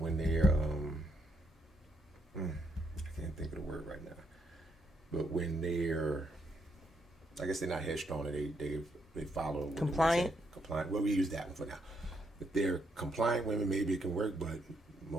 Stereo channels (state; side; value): normal; both; correlation 0.76